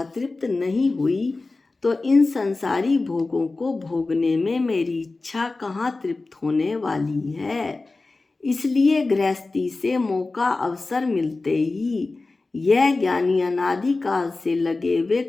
तृप्त नहीं हुई तो इन संसारी भोगों को भोगने में मेरी इच्छा कहाँ तृप्त होने वाली है। इसलिए गृहस्थी से मौका अवसर मिलते ही यह ज्ञानी अनादि काल से लगे हुए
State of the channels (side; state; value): right; quieter; 3.5 dB